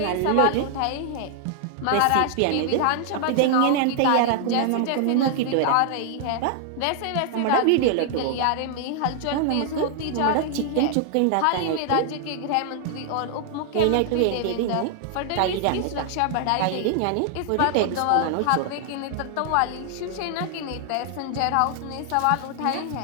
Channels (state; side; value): different; both; correlation 0.00